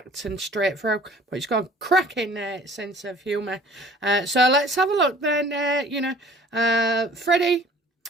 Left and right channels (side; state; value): both; normal; correlation 0.50